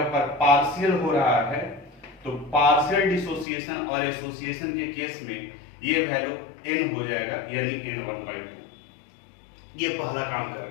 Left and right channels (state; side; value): drops out; right; at 3.5 s